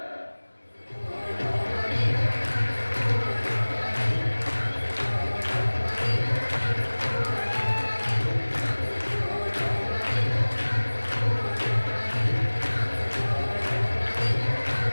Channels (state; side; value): inverted; both; correlation -1.00